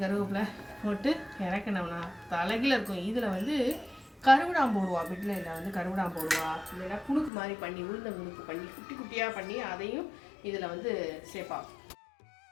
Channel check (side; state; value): right; drops out; at 7.3 s